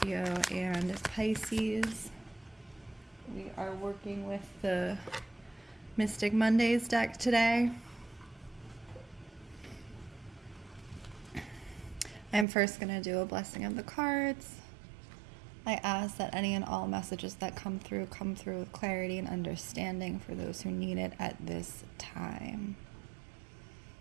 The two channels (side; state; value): left; drops out; at 12.5 s